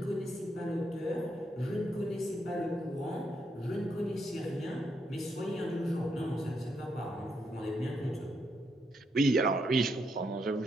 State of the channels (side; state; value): both; normal; correlation 0.78